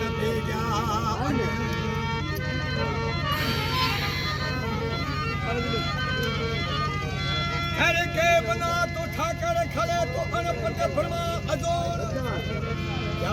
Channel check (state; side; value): identical; both; correlation 1.00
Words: जा घर के बना तो ठाकर खड़े तो अनपट फरमा अजोर